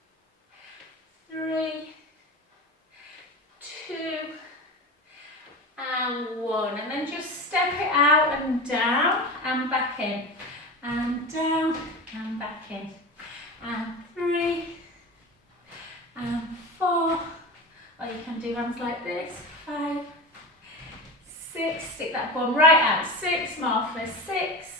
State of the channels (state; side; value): normal; both; correlation 0.27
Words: 3, 2, and 1. And then just step it out and down and back in. And down and back in. And 3, and 4. Or you can do ones like this. 5, 6. Stick that bum right out. 6 more for 6,